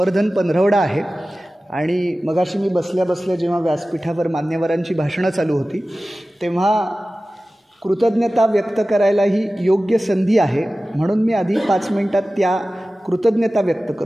पंधरवडा आहे आणि मगाशी मी बसल्या बसल्या जेव्हा व्यासपीठावर मान्यवरांची भाषणं चालू होती तेव्हा कृतज्ञता व्यक्त करायला ही योग्य संधी आहे, म्हणून मी आधी 5 मिनिटात त्या कृतज्ञता व्यक्त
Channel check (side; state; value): both; normal; correlation 0.96